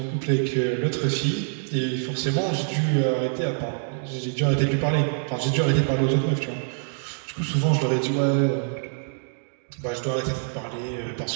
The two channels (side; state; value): left; silent; digital silence